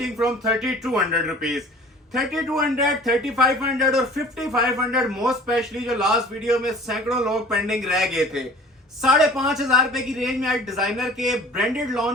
फ्रॉम 3200 रुपीज 3200, 3500 और 5500 मोस्ट स्पेशली जो लास्ट वीडियो में सैकड़ों लोग पेंडिंग रह गए थे। 5500 रुपए की रेंज में आज डिजाइनर के ब्रांडेड लॉन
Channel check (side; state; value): both; normal; correlation 0.45